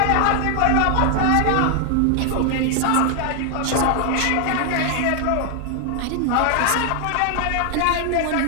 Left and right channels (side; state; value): both; different; correlation 0.00